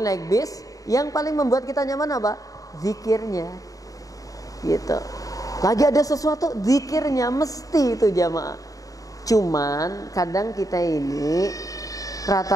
naik bis, yang paling membuat kita nyaman apa? Zikirnya gitu. Lagi ada sesuatu, zikirnya mesti itu jamaah. Cuman kadang kita ini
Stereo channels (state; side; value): late; right; 0.17 ms